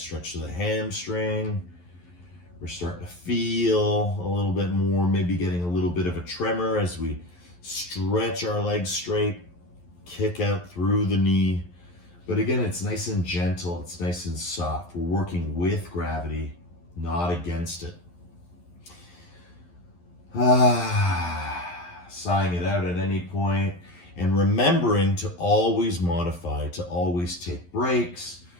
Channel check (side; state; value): right; late; 11 ms